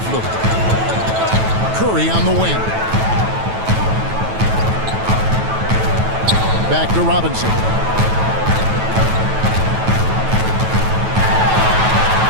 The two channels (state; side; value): late; left; 9.2 ms